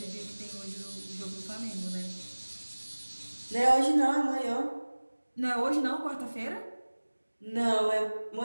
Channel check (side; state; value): both; inverted; correlation -1.00